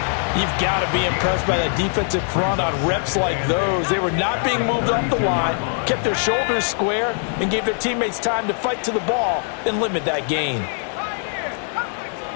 You've got to be impressed by that defensive front on reps like those. They were not being moved off the line, kept their shoulders square, and gave their teammates time to fight to the ball and limit that gain.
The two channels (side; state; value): right; silent; 57 dB below the other